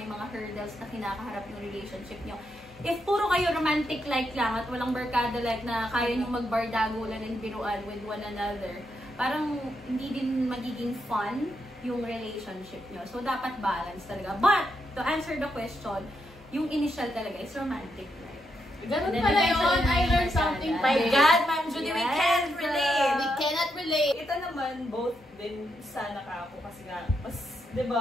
mga hurdles na kinakaharap yung relationship nyo. If puro kayo romantic-like lang at walang barkada-like na kaya nyo magbardagulan and biruan with one another, parang hindi din magiging fun yung relationship nyo. So, dapat balance talaga. But, to answer the question, yung initial talaga is romantic. Ganun pala yun. I learned something. My God, Ma'am Judy, we can't relate! We cannot relate. Ito naman, both din sana ka ako kasi nga, mas, di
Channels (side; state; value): both; normal; correlation 0.81